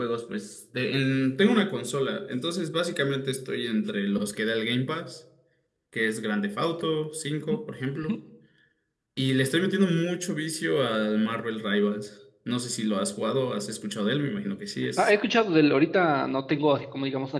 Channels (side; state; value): both; identical; correlation 1.00